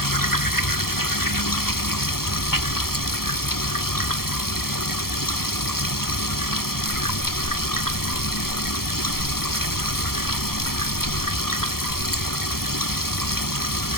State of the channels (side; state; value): right; late; 0.94 ms